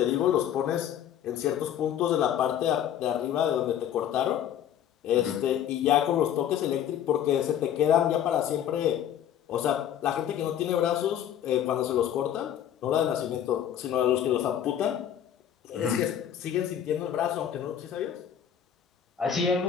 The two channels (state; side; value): quieter; right; 10.0 dB